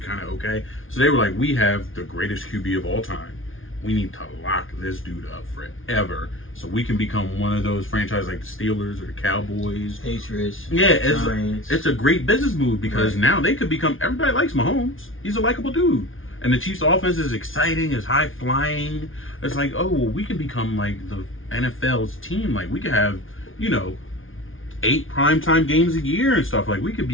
of okay. So they were we have the greatest QB of all time. We need to lock this dude up forever so we can become one of those franchises like the Steelers or the Cowboys. Patriots. Yeah, Giants. it's a great business move because now they could become, everybody likes Mahomes. He's a likable dude. And the Chiefs offense is exciting, is high flying. It's we can become the NFL's team. We could have, 8 primetime games a year and stuff. We could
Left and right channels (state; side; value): late; right; 0.58 ms